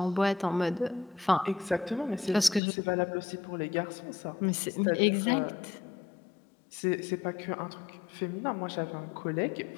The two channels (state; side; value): drops out; right; at 2.6 s